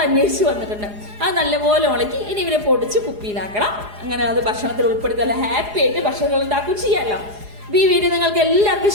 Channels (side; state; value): left; late; 4.8 ms